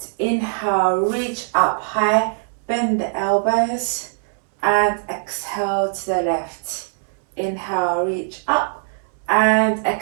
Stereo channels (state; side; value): silent; left; 65 dB below the other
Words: Inhale, reach up high, bend the elbows, and exhale to the left. Inhale, reach up, and